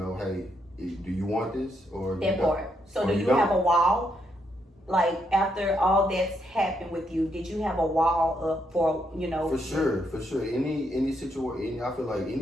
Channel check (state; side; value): normal; both; correlation 0.77